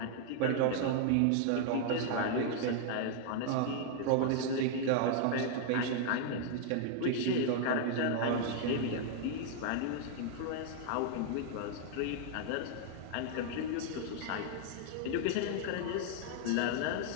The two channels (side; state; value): both; different; correlation 0.00